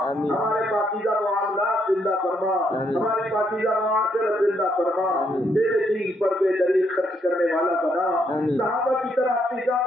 ہمارے پاکیزہ معاملات زندہ فرما، ہماری پاکیزہ معاشرت زندہ فرما، تیرے دین پر بے دریغ خرچ کرنے والا بنا، صحابہ کی طرح اپنی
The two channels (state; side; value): normal; both; correlation 0.74